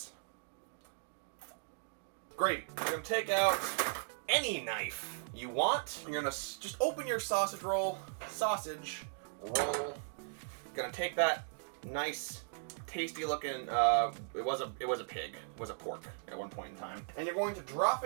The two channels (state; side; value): silent; left; digital silence